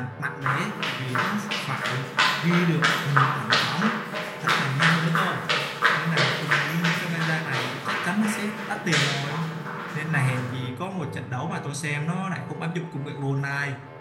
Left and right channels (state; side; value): identical; both; correlation 1.00